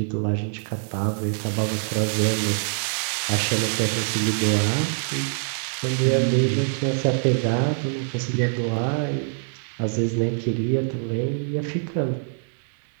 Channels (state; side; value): silent; left; digital silence